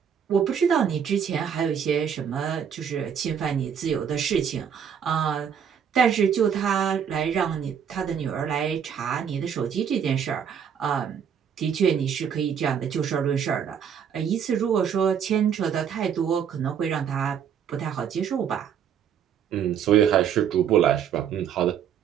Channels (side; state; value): left; quieter; 8.0 dB